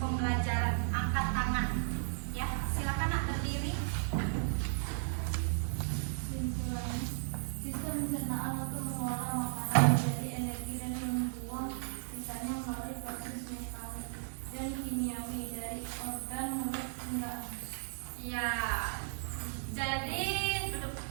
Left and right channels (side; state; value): left; silent; digital silence